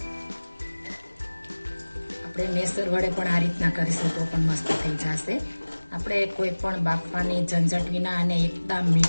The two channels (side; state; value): both; inverted; correlation -1.00